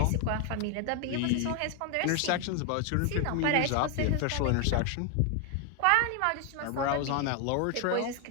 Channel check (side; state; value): both; different; correlation 0.01